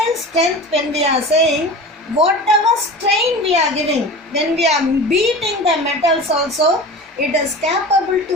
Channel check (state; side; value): normal; both; correlation 0.34